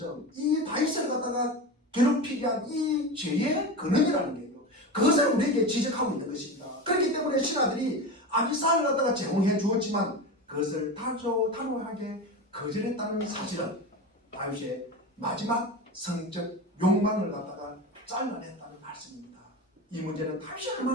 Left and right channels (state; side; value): normal; both; correlation 0.25